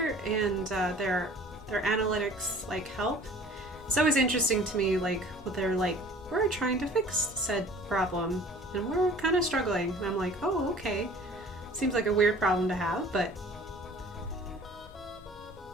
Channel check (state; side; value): normal; both; correlation 0.48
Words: and their analytics like help. It's always interesting to me like what they're like, we're trying to fix said problem and we're kind of struggling. And I'm like, oh, okay. Seems like a weird problem to have, but